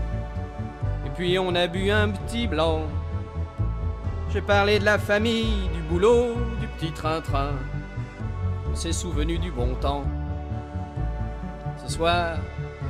Et puis on a bu un petit blanc. J'ai parlé de la famille, du boulot, du petit train-train. On s'est souvenu du bon temps. Ce soir,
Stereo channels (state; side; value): identical; both; correlation 1.00